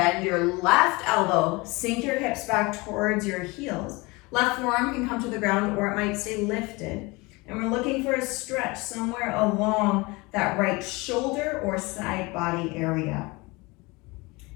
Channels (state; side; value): quieter; right; 24.7 dB